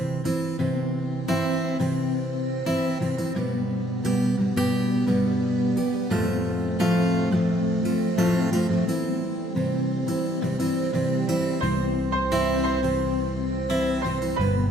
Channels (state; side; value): normal; both; correlation 0.68